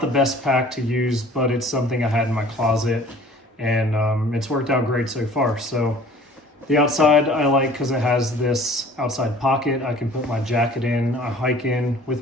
the best pack to use, but it's something I had in my closet, and it's worked out great so far. So the outside I like because it has this outside pocket. I can put my jacket in, I hike in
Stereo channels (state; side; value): normal; both; correlation 0.50